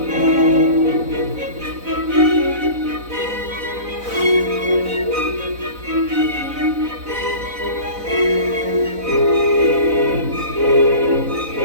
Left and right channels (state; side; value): late; left; 4.0 ms